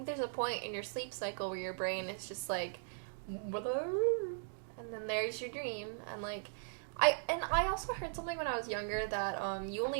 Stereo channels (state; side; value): silent; left; digital silence